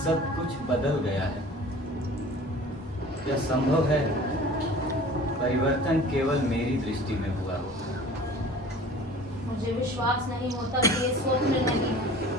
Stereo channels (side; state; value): both; normal; correlation 0.44